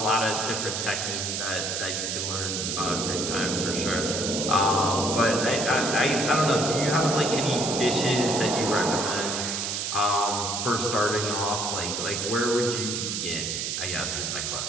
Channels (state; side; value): noise; right; hiss, 2 dB below the sound